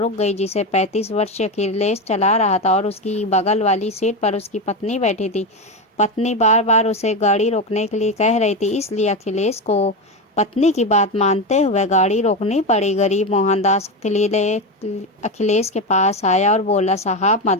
गई, जिसे 35 वर्षीय अखिलेश चला रहा था और उसकी बगल वाली सीट पर उसकी पत्नी बैठी थी। पत्नी बार बार उसे गाड़ी रोकने के लिए कह रही थी, इसलिए अखिलेश को पत्नी की बात मानते हुए गाड़ी रोकनी पड़ी। गरीब मोहनदास अखिलेश के पास आया और बोला, साहब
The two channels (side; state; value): both; normal; correlation 0.16